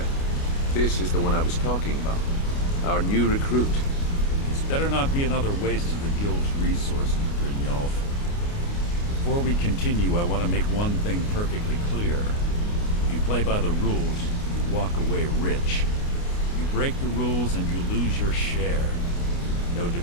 this is the one I was talking about. Our new recruit. This better not be another waste of the Guild's resources, Brynjolf. Before we continue, I want to make one thing perfectly clear. If you play by the rules, you walk away rich. You break the rules and you lose your share. No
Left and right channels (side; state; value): right; late; 29 ms